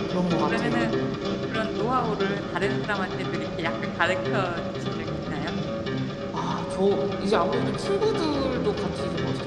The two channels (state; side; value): identical; both; correlation 1.00